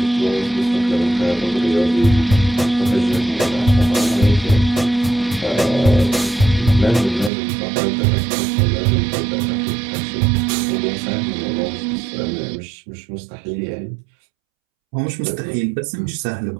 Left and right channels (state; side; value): drops out; left; at 7.3 s